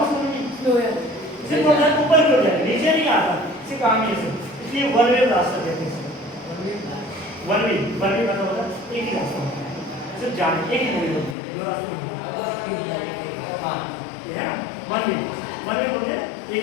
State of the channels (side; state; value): right; drops out; at 11.4 s